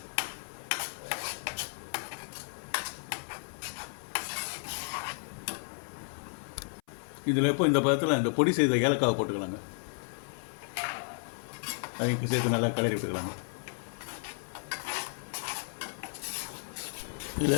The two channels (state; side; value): silent; right; 56 dB below the other